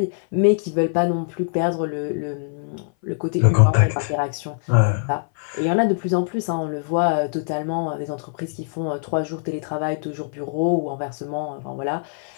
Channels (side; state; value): right; silent; 58 dB below the other